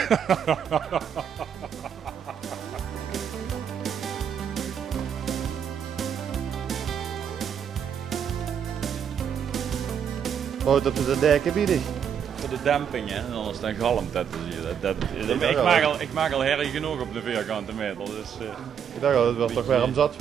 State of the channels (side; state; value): left; quieter; 8.1 dB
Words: Wat op de dekken bieden? Voor de demping, hè, en anders dan galmt dat. Ik maak al herrie genoeg op de vierkante meter. Dus, Ik dacht al, het was toch weer om zat